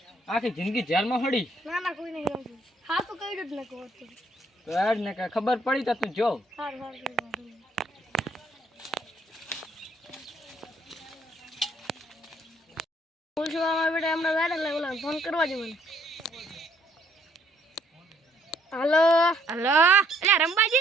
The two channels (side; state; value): both; normal; correlation 0.67